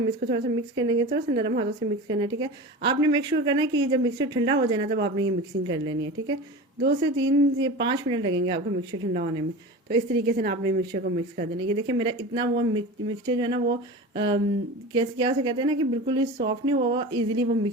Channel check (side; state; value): both; normal; correlation 0.31